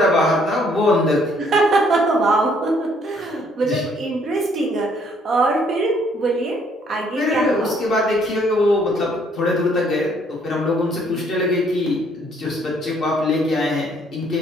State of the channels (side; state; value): both; normal; correlation 0.65